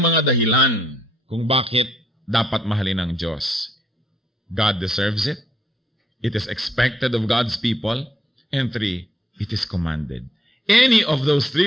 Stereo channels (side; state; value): both; normal; correlation 0.73